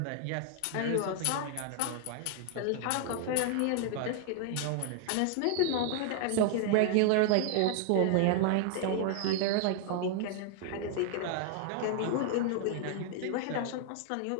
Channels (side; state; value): both; different; correlation 0.00